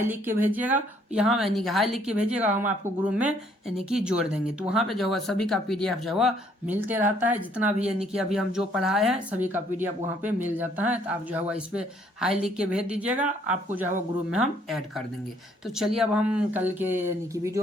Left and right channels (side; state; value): both; normal; correlation 0.65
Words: लिख के भेजिएगा, यहाँ यानी कि हाई लिख के भेजिएगा, हम आपको ग्रुप में यानी कि जोड़ देंगे। तो वहाँ पे जो है सभी का PDF जो है मिलते रहता है, जितना भी यानी कि अभी हम जो पढ़ाए हैं सभी का PDF वहाँ पे मिल जाता है। तो आप जो है इस पे हाई लिख के भेज दीजिएगा, आपको जो है ग्रुप में हम ऐड कर देंगे। तो चलिए अब हम कल के यानी कि